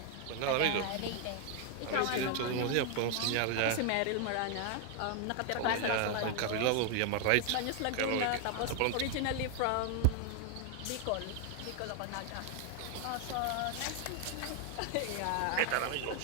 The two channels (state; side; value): different; both; correlation 0.00